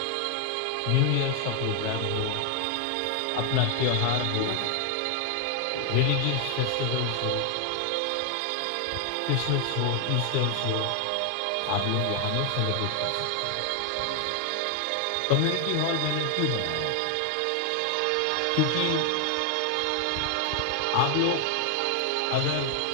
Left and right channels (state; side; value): different; both; correlation 0.00